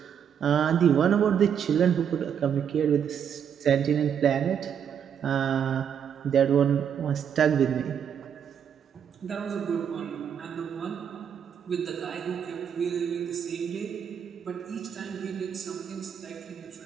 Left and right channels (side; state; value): left; quieter; 8.2 dB